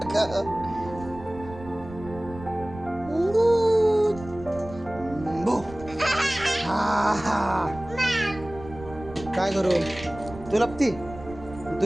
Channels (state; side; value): noise; right; rumble, 15 dB below the sound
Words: काय करू? तू लपती?